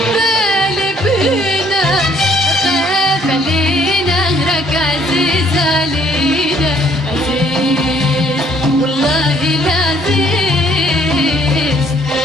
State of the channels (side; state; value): both; normal; correlation 0.62